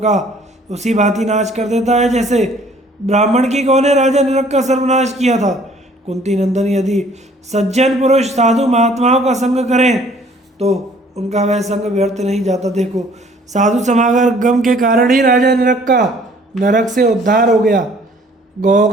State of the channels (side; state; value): both; normal; correlation 0.57